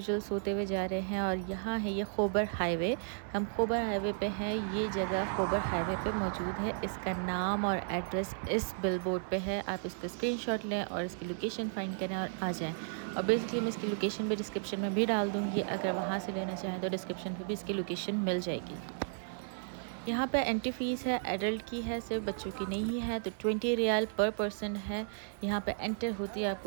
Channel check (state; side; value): silent; left; 55 dB below the other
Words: सोते हुए जा रहे हैं और यहाँ है ये खोबर हाईवे। हम खोबर हाईवे पे हैं। ये जगह खोबर हाईवे पे मौजूद है। इसका नाम और एड्रेस इस बिलबोर्ड पे है। आप इसका स्क्रीनशॉट लें और इसकी लोकेशन फाइंड करें और आ जाएँ। और बेसिकली मैं इसकी लोकेशन भी डिस्क्रिप्शन में भी डाल दूँगी। अगर वहाँ से लेना चाहें तो डिस्क्रिप्शन पे भी इसकी लोकेशन मिल जाएगी। यहाँ पे एंट्री फ़ीस है, एडल्ट की है, सिर्फ बच्चों की नहीं है। तो 20 रियाल पर पर्सन है। यहाँ पे एंटर होती है